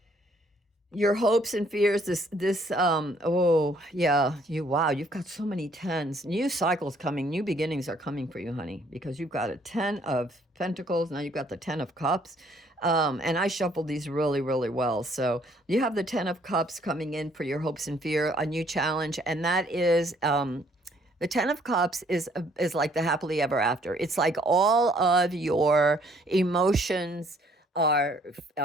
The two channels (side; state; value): both; normal; correlation 0.63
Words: Your hopes and fears, oh yeah, you've got so many tens. New cycles coming, new beginnings are coming for you, honey, because you've got a 10 of Pentacles, now you've got the 10 of Cups. And I shuffled these really, really well. So you have the 10 of Cups coming in for your hopes and fear, a new challenge, and that is, the 10 of Cups is like the happily ever after. It's like all of your emotions are